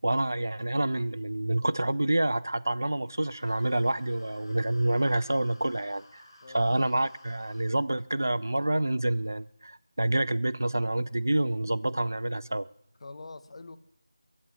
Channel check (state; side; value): inverted; both; correlation -0.98